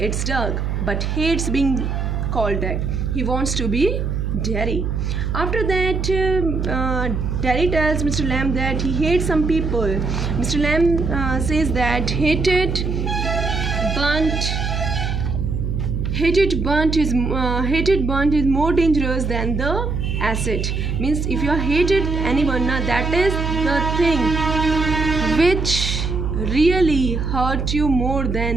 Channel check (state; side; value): noise; right; hum, 1 dB below the sound